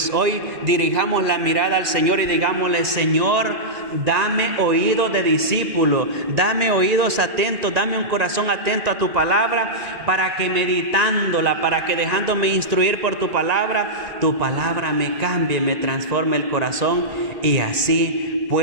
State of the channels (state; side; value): late; left; 1.9 ms